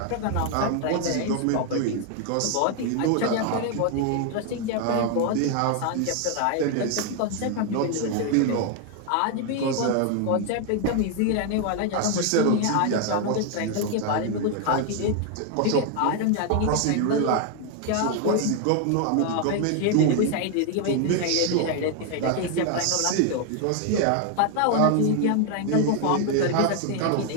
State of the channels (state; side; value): different; both; correlation 0.00